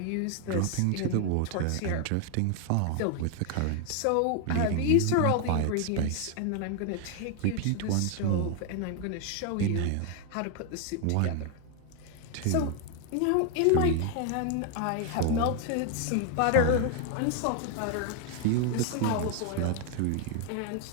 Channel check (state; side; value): different; both; correlation 0.01